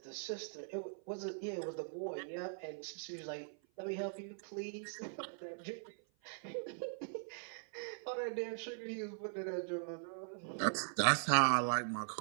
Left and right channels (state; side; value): silent; left; 50 dB below the other